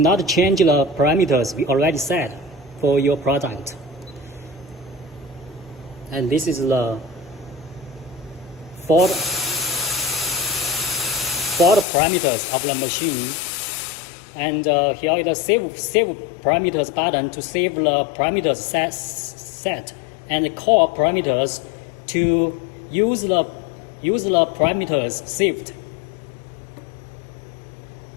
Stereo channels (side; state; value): right; drops out; at 11.9 s